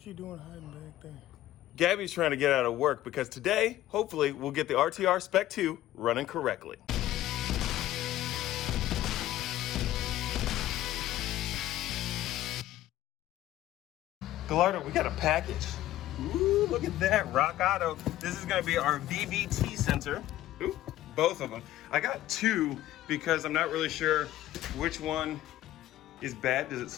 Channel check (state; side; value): quieter; right; 14.3 dB